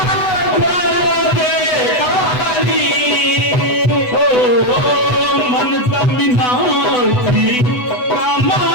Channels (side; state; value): right; late; 8.0 ms